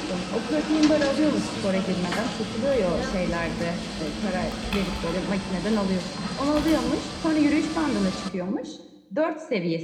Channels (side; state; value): both; identical; correlation 1.00